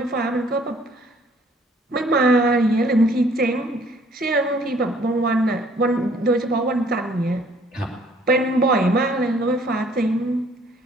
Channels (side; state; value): both; normal; correlation 0.59